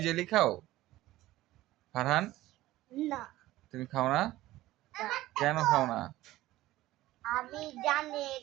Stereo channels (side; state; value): left; quieter; 16.4 dB